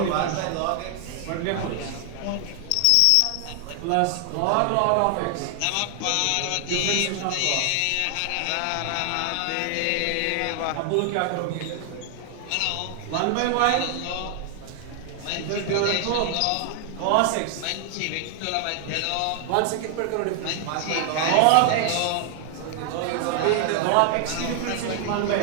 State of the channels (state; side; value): different; both; correlation 0.00